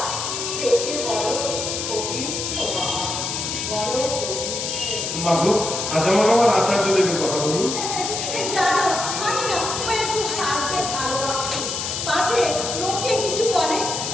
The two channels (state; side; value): noise; left; hiss, 3 dB below the sound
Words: সে যে বড় পবিত্র বাবা, বড় পবিত্র। মা গো, আজ আমার আচার্য দেবের কথা বলুন। জানো, আমি না ও একটু সাজতে ভালোবাসি। পাছে লোকে কিছু বলে,